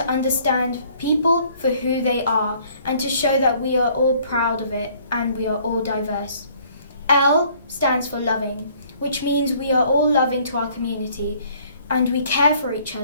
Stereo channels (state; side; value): inverted; both; correlation -0.59